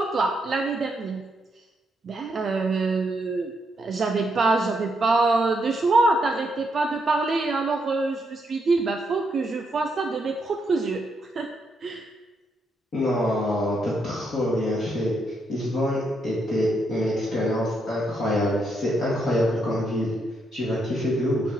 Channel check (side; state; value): both; normal; correlation 0.78